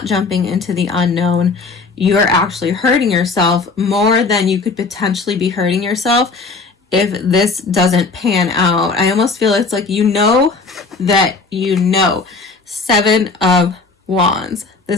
jumping into the unknown, you're actually hurting yourself more than you could potentially be hurting yourself if this doesn't pan out. I almost feel it's like you know that you know. 7 of Wands.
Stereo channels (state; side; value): quieter; right; 4.2 dB